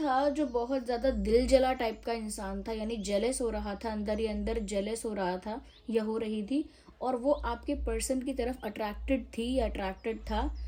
जो बहुत ज़्यादा दिल जला टाइप का इंसान था, यानी जेलस हो रहा था, अंदर ही अंदर जेलस हो रहा था या हो रही थी, और वो आपके पर्सन की तरफ अट्रैक्टेड थी या अट्रैक्टेड था।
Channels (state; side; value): identical; both; correlation 1.00